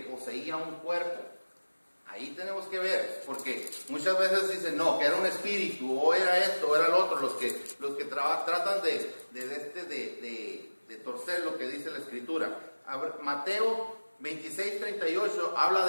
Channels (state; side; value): inverted; both; correlation -1.00